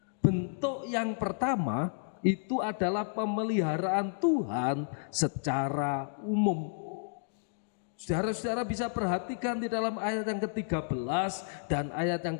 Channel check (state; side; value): silent; right; digital silence